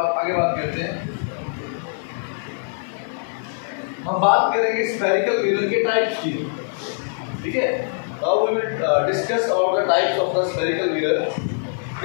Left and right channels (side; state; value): right; silent; 58 dB below the other